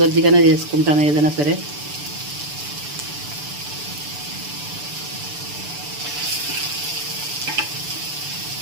చేసుకుంటాను ఏదైనా సరే.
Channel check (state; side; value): late; left; 6.9 ms